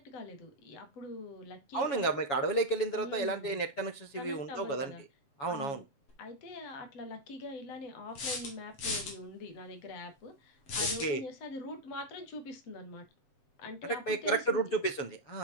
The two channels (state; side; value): late; right; 7.2 ms